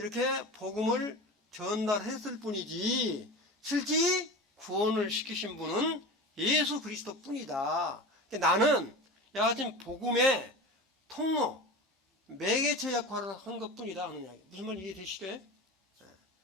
복음을 전달했을 뿐이지 실제 구원을 시키신 분은 예수 그리스도 뿐이다. 나는 여하튼 복음의 통로, 매개체 역할을 한 것 뿐이다 하는 이야기. 무슨 말 이해되시죠?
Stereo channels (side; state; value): both; normal; correlation 0.30